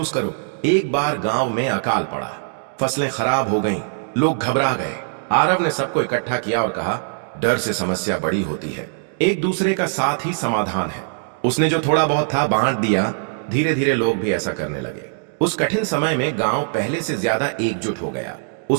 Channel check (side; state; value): left; silent; digital silence